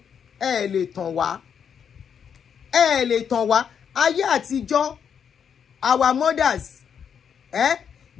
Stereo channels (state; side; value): quieter; right; 7.6 dB